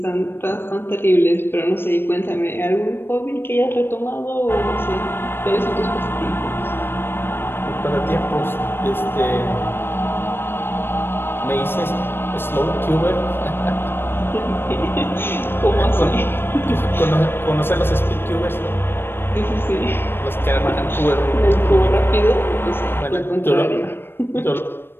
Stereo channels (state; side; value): late; right; 0.10 ms